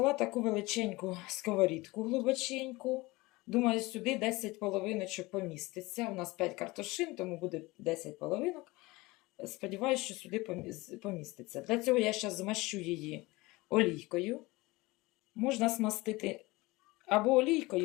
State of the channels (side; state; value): right; quieter; 21.9 dB